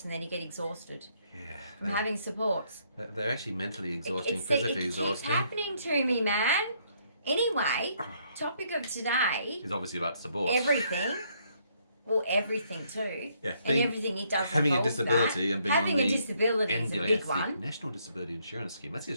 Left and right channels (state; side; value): inverted; both; correlation -0.70